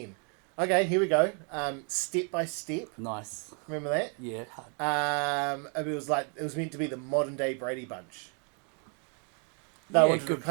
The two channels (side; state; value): left; quieter; 39.3 dB